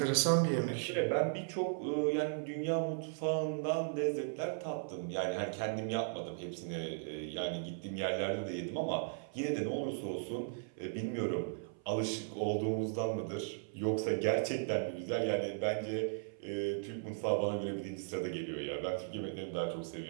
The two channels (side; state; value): left; silent; 53 dB below the other